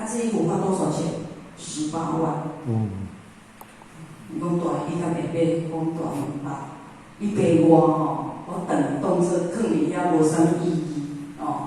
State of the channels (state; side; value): identical; both; correlation 1.00